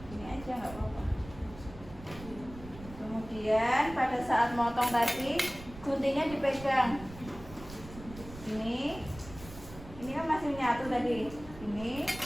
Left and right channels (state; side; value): noise; right; rumble, 15 dB below the sound